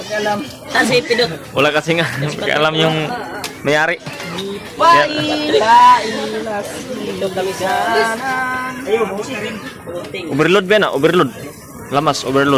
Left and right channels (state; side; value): identical; both; correlation 1.00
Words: Saan si Pidot? Wala kasi nga alam yung mayari. Pailas, Ilog kami sa ayun, busi rin. Puting. Overload ba na? Overload. Lamas,